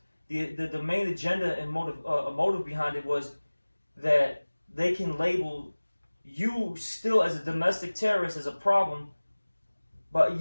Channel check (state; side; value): inverted; both; correlation -1.00